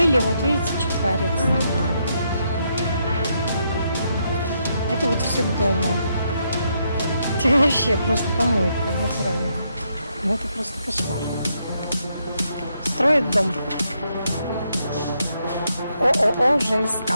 вот видите, что творится. Это вот все к дому. Это вообще просто помойка, вот правильно. Ну это просто кошмар. Строят дом. ООО ЖСК.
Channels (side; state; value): both; inverted; correlation -0.78